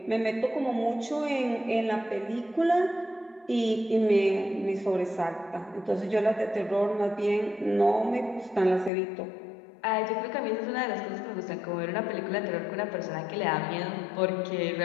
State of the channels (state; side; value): drops out; right; at 8.9 s